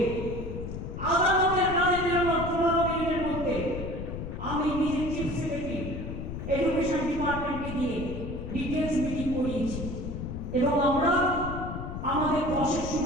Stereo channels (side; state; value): left; noise; rumble, 6 dB below the sound